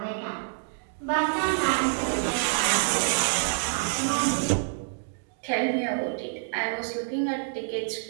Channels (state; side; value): silent; left; digital silence